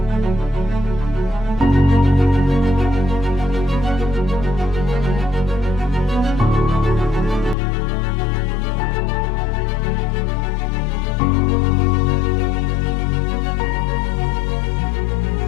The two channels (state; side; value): drops out; right; at 7.6 s